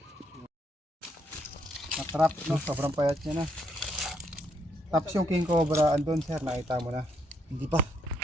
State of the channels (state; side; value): normal; both; correlation 0.74